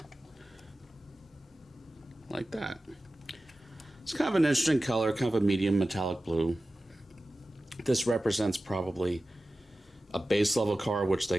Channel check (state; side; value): normal; both; correlation 0.95